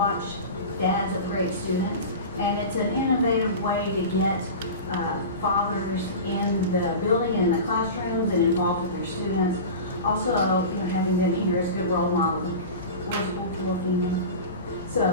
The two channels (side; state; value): both; inverted; correlation -0.30